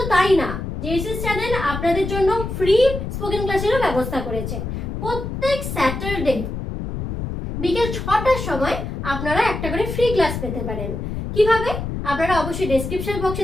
তাই না, জেএসএস চ্যানেল আপনাদের জন্য ফ্রি স্পোকেন ক্লাসেরও ব্যবস্থা করেছে। প্রত্যেক স্যাটারডে বিকেল 6টার সময় আপনারা একটা করে ফ্রি ক্লাস পেতে পারেন। কিভাবে? আপনারা অবশ্যই ডেসক্রিপশন বক্সে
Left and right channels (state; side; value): noise; left; rumble, 5 dB below the sound